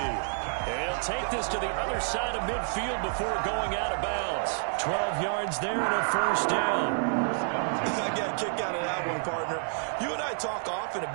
And he'll take this to the other side of midfield before going out of bounds. 12 yards there and a first down. I got a kick out of that one, partner. You and I talk often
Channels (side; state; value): left; silent; digital silence